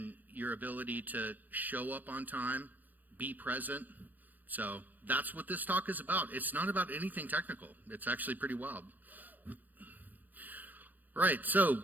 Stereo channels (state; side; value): late; left; 0.087 ms